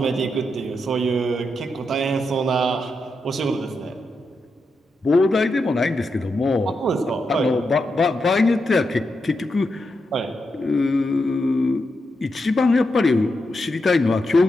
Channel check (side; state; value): both; normal; correlation 0.85